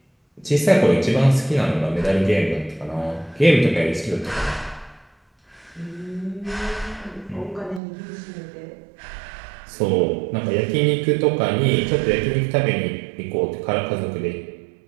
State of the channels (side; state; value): left; drops out; at 7.8 s